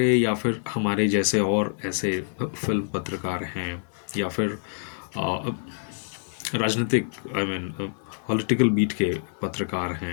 या फिर हमारे जैसे और ऐसे फिल्म पत्रकार हैं या फिर अ, राजनीतिक, आई मीन पॉलिटिकल बीट के पत्रकार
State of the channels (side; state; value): right; silent; 57 dB below the other